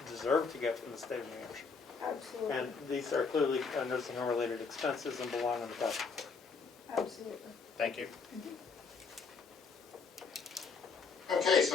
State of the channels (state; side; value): quieter; right; 4.9 dB